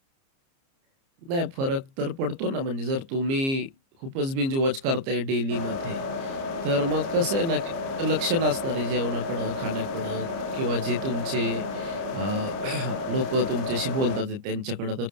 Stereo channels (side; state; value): left; late; 30 ms